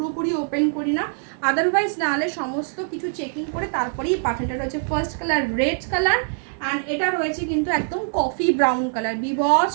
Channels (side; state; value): left; silent; 63 dB below the other